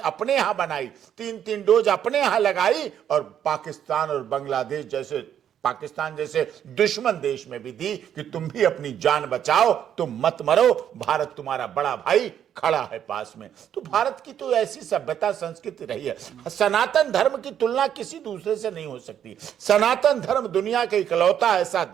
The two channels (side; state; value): left; quieter; 9.6 dB